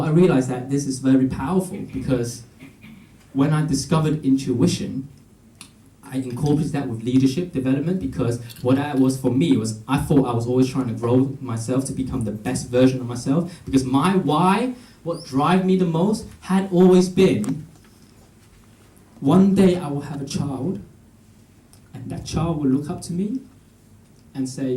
I realized that this is very powerful, because when I discovered intuition, I incorporated that with leadership development, because what that was for me was I thought I was always trying to grow myself to become the best version of myself, because my why, what drives me the most, had always been one day I will have a child, and that child will look up to me and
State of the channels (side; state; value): both; identical; correlation 1.00